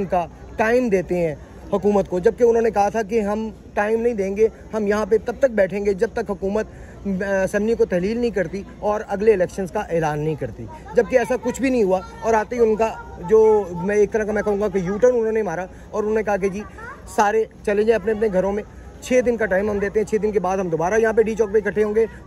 का टाइम देते हैं हुकूमत को, जबकि उन्होंने कहा था कि हम टाइम नहीं देंगे, हम यहाँ पे तब तक बैठेंगे जब तक हुकूमत असम्बली को तहलील नहीं करती और अगले इलेक्शंस का ऐलान नहीं करती। जबकि ऐसा कुछ भी नहीं हुआ और आते ही उनका जो मैं एक तरह का मैं कहूँगा कि यू टर्न उन्होंने मारा और उन्होंने कहा कि जी सारे चले जाएँ अपने अपने घरों में, 6 दिन का टाइम हम देते हैं, 6 दिन के बाद हम दोबारा यहाँ पे डी चौक पे इकट्ठे होंगे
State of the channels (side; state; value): both; identical; correlation 1.00